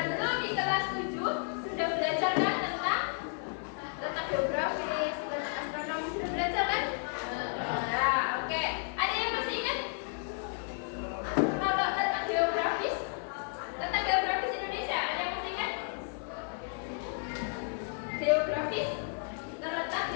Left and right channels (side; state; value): right; silent; 56 dB below the other